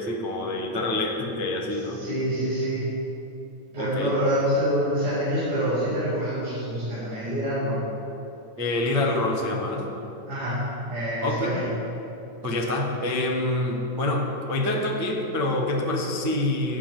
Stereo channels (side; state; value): left; late; 8.9 ms